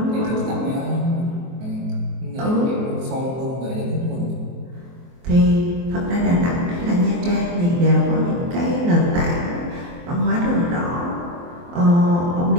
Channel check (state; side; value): late; left; 23 ms